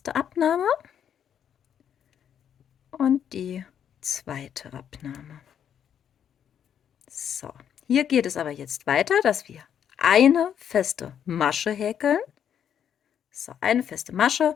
Abnahme und die zweite Abnahme. So, hier geht es aber jetzt weiter, dass wir eine feste Masche häkeln. So, eine feste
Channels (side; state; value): right; quieter; 8.9 dB